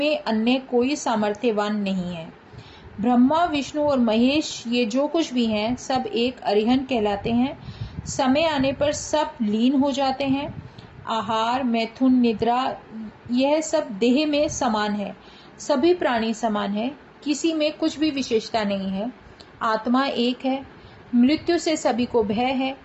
अन्य कोई सामर्थ्यवान नहीं है। ब्रह्मा, विष्णु और महेश ये जो कुछ भी हैं, सब एक अरिहन कहलाते हैं। समय आने पर सब लीन हो जाते हैं। आहार, मैथुन, निद्रा यह सब देह में समान है। सभी प्राणी समान है, किसी में कुछ भी विशेषता नहीं है। आत्मा एक है। मृत्यु से सभी को भय है।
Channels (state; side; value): identical; both; correlation 1.00